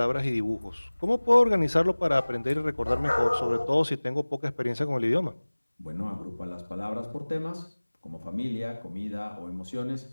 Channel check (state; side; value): inverted; both; correlation -1.00